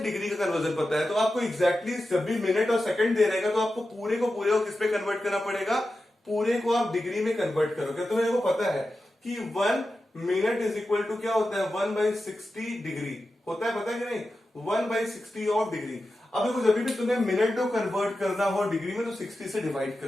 का कन्वर्जन पता है, तो आपको एग्जैक्टली जब भी मिनट और सेकंड दे रहेगा तो आपको पूरे को किस पे कन्वर्ट करना पड़ेगा, पूरे को आप डिग्री में कन्वर्ट करोगे। तो मेरे को पता है कि 1 मिनट इज इक्वल टू क्या होता है 1/60 डिग्री होता है, पता है कि नहीं 1/60 ऑफ डिग्री। अब देखो जब भी तुम्हें मिनट को कन्वर्ट करना हो डिग्री में तो 60 से डिवाइड कर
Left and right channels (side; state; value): both; normal; correlation 0.92